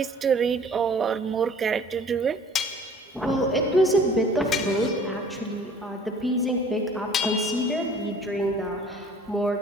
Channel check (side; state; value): both; normal; correlation 0.50